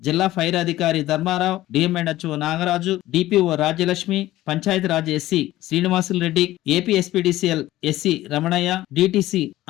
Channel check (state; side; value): quieter; right; 15.6 dB